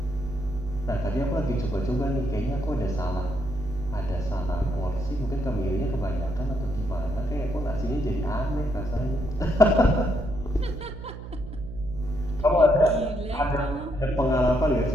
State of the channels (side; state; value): right; noise; hum, 11 dB below the sound